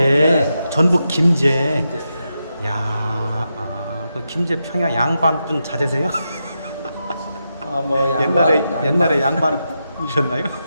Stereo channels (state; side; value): inverted; both; correlation -0.87